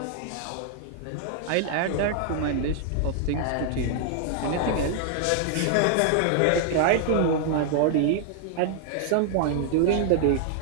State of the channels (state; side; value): different; both; correlation 0.00